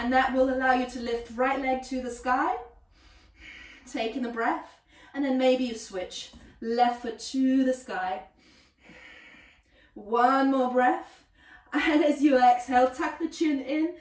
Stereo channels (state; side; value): identical; both; correlation 1.00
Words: that will allow you to lift right leg to the sky, taking a breath, and then maybe you switch left foot to the sky. 1 more breath, and as you exhale, tuck the chin in,